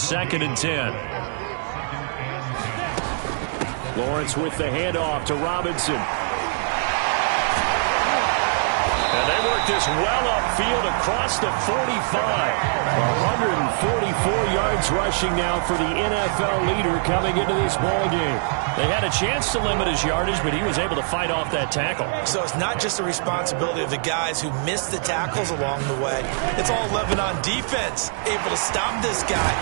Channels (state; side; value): silent; left; digital silence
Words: 2nd and 10. Lawrence with the handoff to Robinson. And they work this well upfield across the 45. 144 yards rushing now for the NFL leader coming into this ball game. They had a chance to limit his yardage, but he was able to fight off that tackle. So it's not just the responsibility of the guys who missed the tackles along the way. It's all 11 on defense. Able to stop this guy,